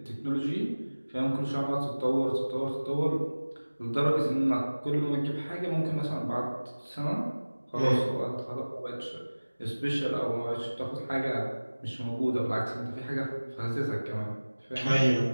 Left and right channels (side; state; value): both; inverted; correlation -1.00